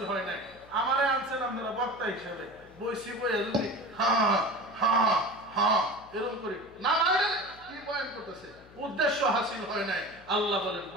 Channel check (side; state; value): left; noise; hum, 24 dB below the sound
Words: হয় নাই আমারে আনছেন আপনারা বক্তা হিসেবে বইসি বইয়া যদি এরকম করি না কি বয়ান করতেছে উদ্দেশ্য হাসিল হয় নাই আল্লাহ বলেন